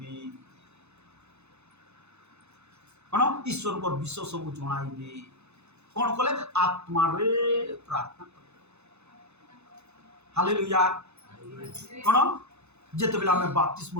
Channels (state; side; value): late; left; 0.81 ms